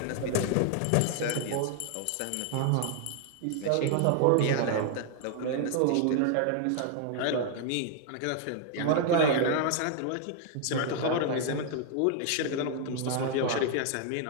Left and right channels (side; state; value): both; different; correlation 0.00